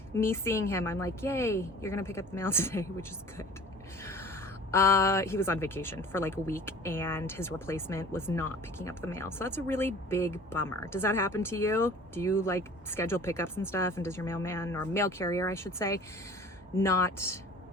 me seeing him, I'm like, yay, you're gonna pick up the mail today, which is good. He was on vacation for like a week and his replacement was not picking up the mail. So that's a really big bummer. Does that happen to you? Do you like schedule pickups and stuff? And does your mailman or mail carrier, I should say, not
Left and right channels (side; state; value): both; normal; correlation 0.45